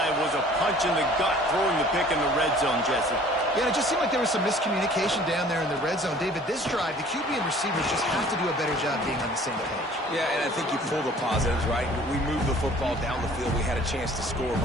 was a punch in the gut, throwing the pick in the red zone, Jesse. Yeah, it just seemed like there was some miscommunication down there in the red zone. David, this drive, the QB and receivers just have to do a better job being on the same page. Yeah, and I think you pull the positives, right? We moved the football down the field. We had a chance to score,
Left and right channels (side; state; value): both; normal; correlation 0.51